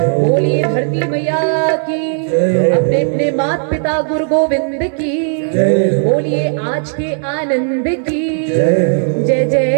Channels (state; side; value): silent; left; digital silence